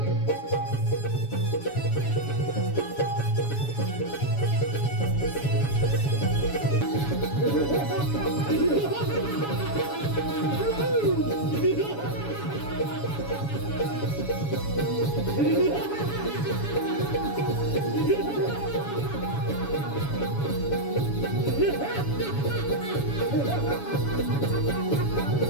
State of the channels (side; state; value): right; late; 7.1 ms